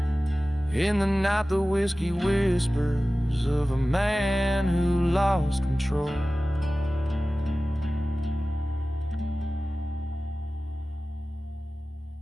In the night the whiskey whispers of a man who lost control.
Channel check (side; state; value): both; normal; correlation 0.96